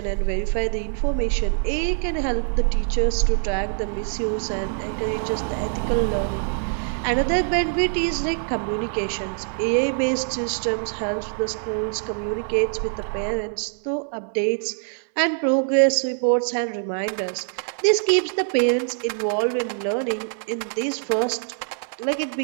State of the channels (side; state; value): left; silent; 63 dB below the other